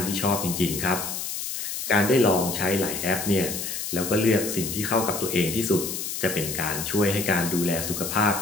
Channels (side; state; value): left; noise; hiss, 5 dB below the sound